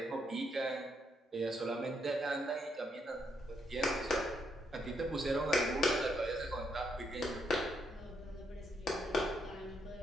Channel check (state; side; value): normal; both; correlation 0.77